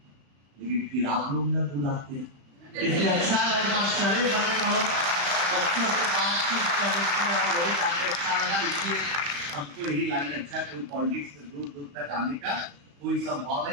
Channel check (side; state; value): left; late; 35 ms